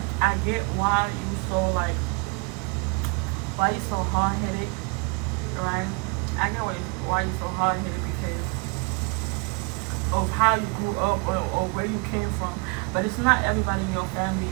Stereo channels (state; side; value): quieter; left; 30.5 dB